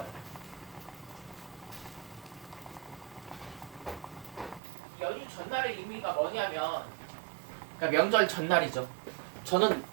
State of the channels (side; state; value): left; drops out; at 4.6 s